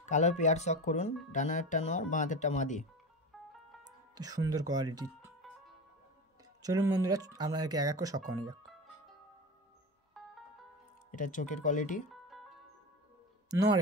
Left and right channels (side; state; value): both; normal; correlation 0.25